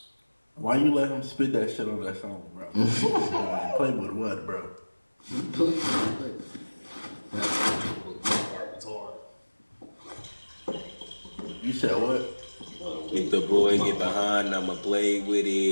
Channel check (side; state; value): both; inverted; correlation -1.00